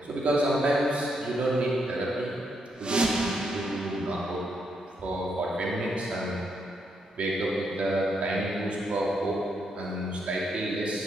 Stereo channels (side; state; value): both; normal; correlation 0.78